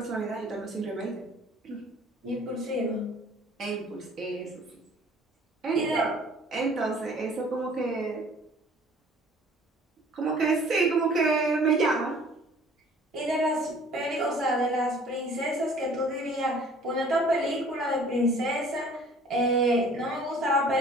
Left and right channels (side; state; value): both; normal; correlation 0.52